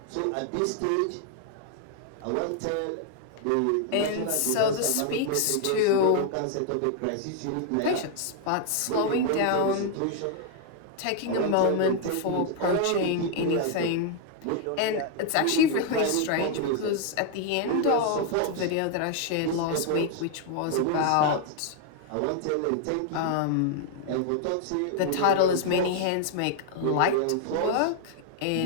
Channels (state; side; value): different; both; correlation 0.00